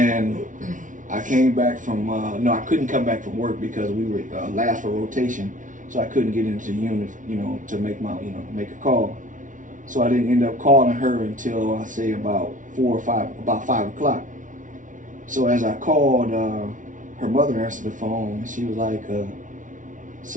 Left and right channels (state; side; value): late; left; 0.37 ms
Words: I came back from, I couldn't come back from work because we were last for rotation. So I couldn't get into the unit, to make make a call. So I didn't end up calling her until, I say, about 5 o'clock. So as I called, her mother answered the phone, and she was like,